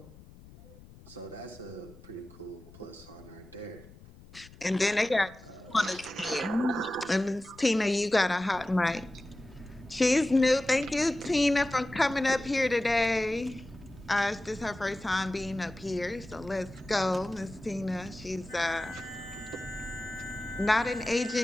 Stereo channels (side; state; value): left; noise; rumble, 21 dB below the sound